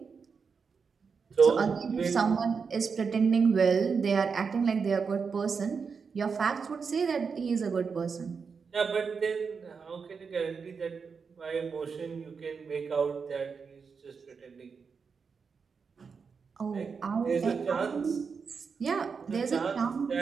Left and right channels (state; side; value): quieter; left; 5.6 dB